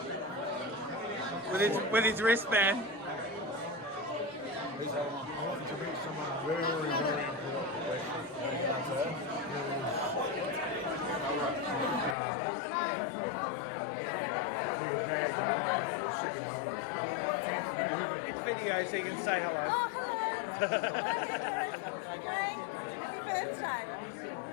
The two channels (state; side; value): drops out; right; at 12.2 s